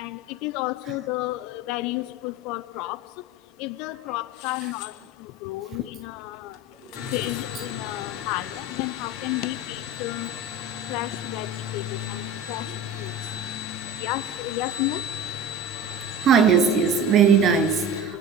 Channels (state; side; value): normal; both; correlation 0.33